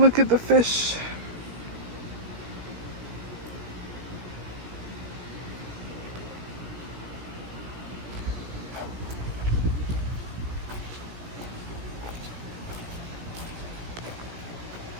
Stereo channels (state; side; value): late; left; 17 ms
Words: at the fish.